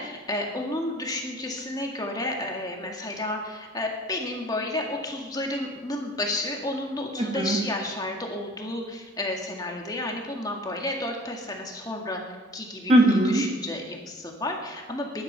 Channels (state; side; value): normal; both; correlation 0.48